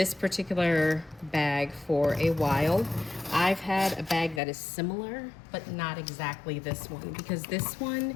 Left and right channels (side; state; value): right; drops out; at 4.4 s